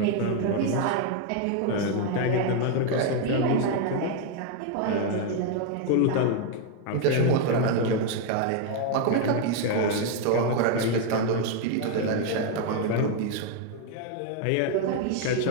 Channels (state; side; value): different; both; correlation 0.01